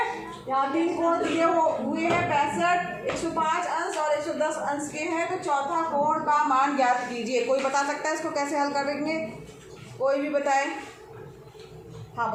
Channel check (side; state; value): both; identical; correlation 1.00